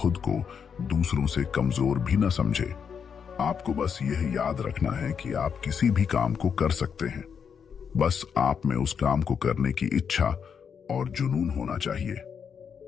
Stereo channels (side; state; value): right; quieter; 6.9 dB